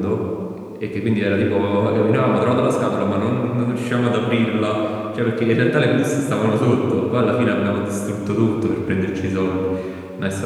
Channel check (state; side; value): identical; both; correlation 1.00